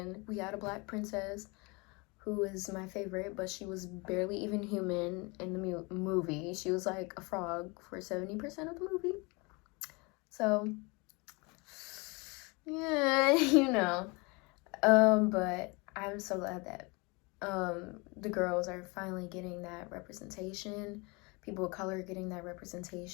we had a black princess who is my favorite, but she was barely even human in the movie. She was like a frog for 70% of the movie. So yeah, you know. But I'm so glad that the girls are finally getting that representation. People of color getting that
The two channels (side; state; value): right; quieter; 28.0 dB